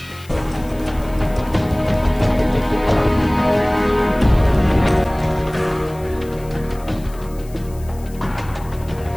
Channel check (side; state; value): left; noise; hiss, 23 dB below the sound